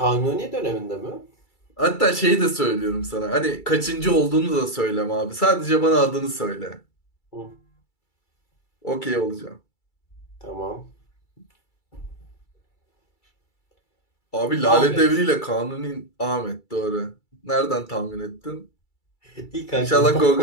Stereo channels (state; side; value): late; right; 2.3 ms